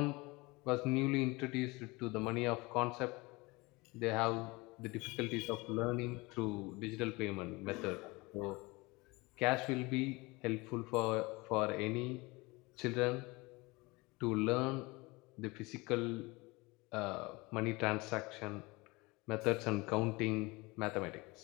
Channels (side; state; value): right; quieter; 24.0 dB